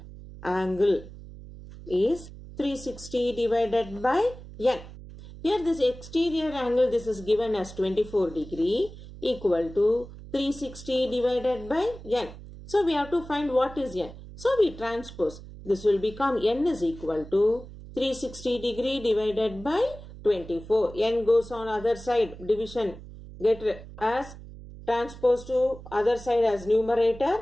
angle is 360 divided by n. Here this exterior angle, this is given as 24 degree equal to 360 divided by n. So we have to find what is n. So we transpose. This will become n is equal to 360 degree divided by 24. N goes on other side, division get as transpose to other side as numerator,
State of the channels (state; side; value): noise; right; hum, 15 dB below the sound